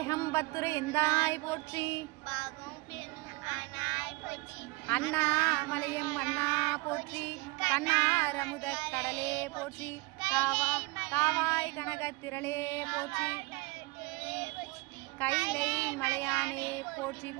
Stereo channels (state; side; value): quieter; left; 23.9 dB